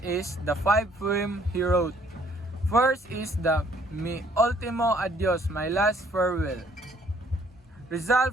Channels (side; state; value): both; normal; correlation 0.62